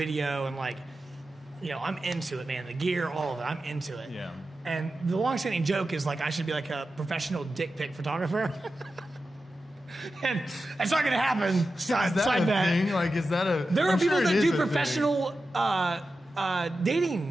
and I'm into it, man. The gear, all of it, I'm into it. Yeah. And the long-standing joke is I should be a professional dick pic photographer. And it's not going to happen. Side bet. Thing? Is that a? There are people that do professional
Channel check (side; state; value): both; normal; correlation 0.92